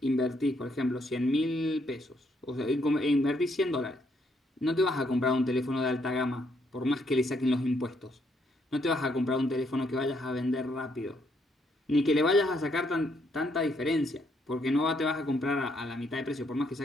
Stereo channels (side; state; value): both; normal; correlation 0.73